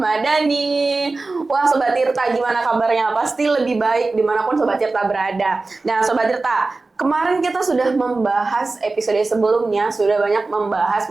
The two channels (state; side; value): quieter; left; 3.6 dB